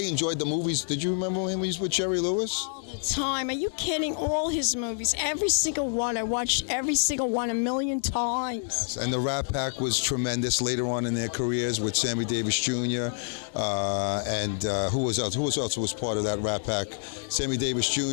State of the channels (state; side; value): silent; right; digital silence